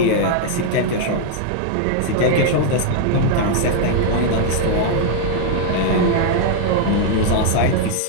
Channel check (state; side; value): different; both; correlation 0.00